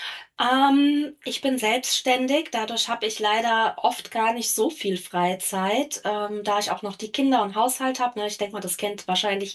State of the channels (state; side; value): identical; both; correlation 1.00